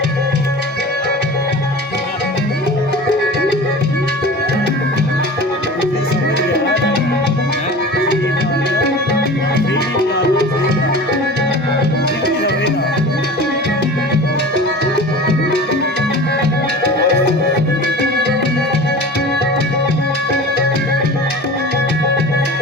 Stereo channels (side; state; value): both; normal; correlation 0.36